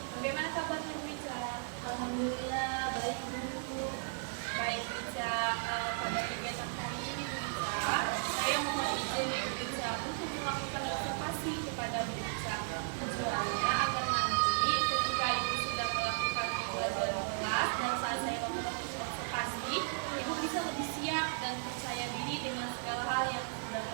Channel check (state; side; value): silent; left; digital silence